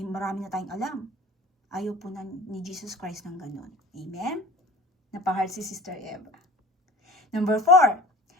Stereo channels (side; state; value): both; normal; correlation 0.42